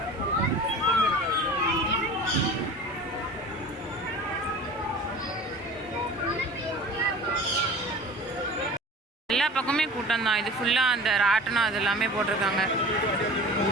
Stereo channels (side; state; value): both; normal; correlation 0.39